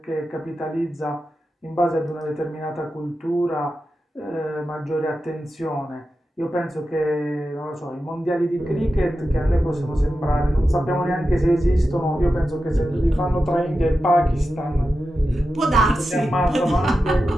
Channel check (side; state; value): both; normal; correlation 0.91